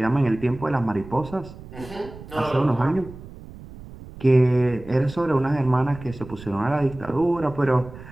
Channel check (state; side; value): noise; right; rumble, 16 dB below the sound